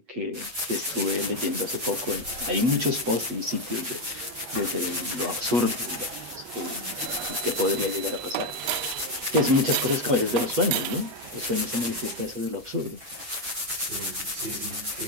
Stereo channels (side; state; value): left; late; 8.2 ms